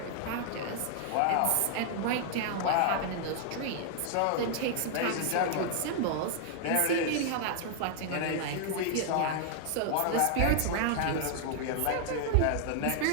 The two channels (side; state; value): both; different; correlation 0.00